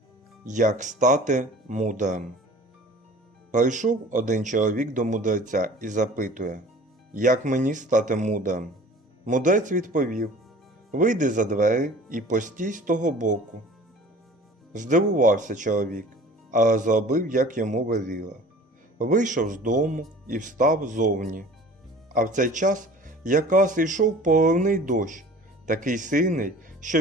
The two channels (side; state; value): both; normal; correlation 0.45